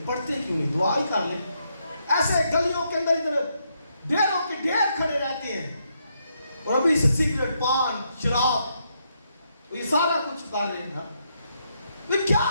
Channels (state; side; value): inverted; both; correlation -0.78